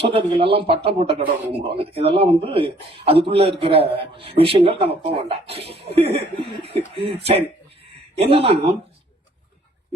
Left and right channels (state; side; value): normal; both; correlation 0.60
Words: எல்லாம் பட்டம் போட்ட கடவுளை கும்பிடுவாங்க. இதெல்லாம் அதுக்குள்ள இருக்கிற விஷயங்கள் நம்ம போக வேண்டாம். சரி, என்னன்னா